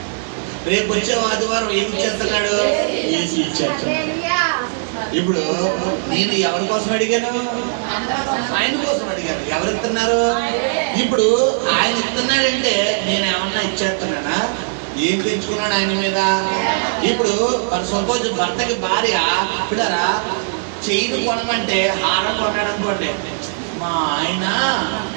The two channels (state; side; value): silent; left; digital silence